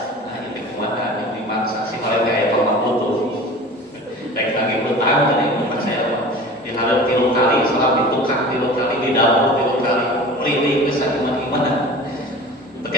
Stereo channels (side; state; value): both; normal; correlation 0.38